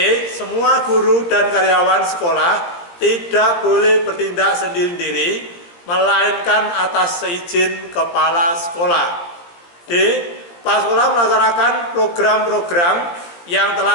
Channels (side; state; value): right; late; 17 ms